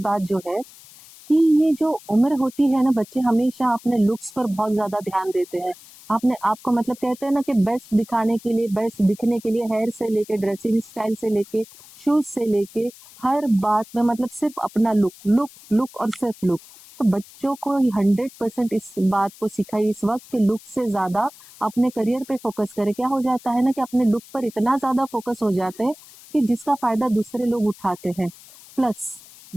जो है कि ये जो उम्र होती है ना, बच्चे हमेशा अपने लुक्स पर बहुत ज़्यादा ध्यान देते हैं। आपने आपको मतलब कहते हैं ना कि बेस्ट दिखाने के लिए, बेस्ट दिखने के लिए हेयर से लेके, ड्रेसिंग स्टाइल से लेके, शूज़ से लेके, हर बात में मतलब सिर्फ़ अपना लुक, लुक, लुक और सिर्फ़ लुक। तो बच्चों को 100% इस बात को सिखाइए इस वक़्त कि लुक से ज़्यादा अपने करियर पे फ़ोकस करें। क्या हो जाता है ना कि अपने लुक पर इतना ज़्यादा फ़ोकस हो जाते हैं कि जिसका फ़ायदा दूसरे लोग उठाते हैं। प्लस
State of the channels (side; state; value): left; noise; hiss, 21 dB below the sound